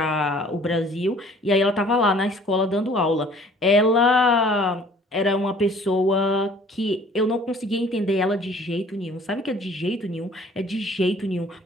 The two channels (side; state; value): both; normal; correlation 0.53